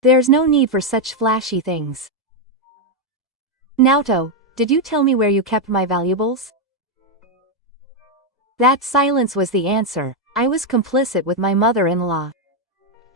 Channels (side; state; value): both; normal; correlation 0.02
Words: There's no need for such flashy things. Naoto, did you tell me where you kept my valuables? That silence was the answer. I was complicit with my mother-in-law.